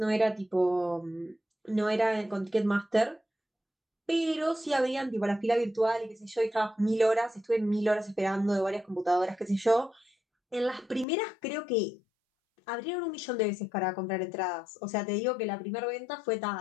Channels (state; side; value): drops out; right; at 11.1 s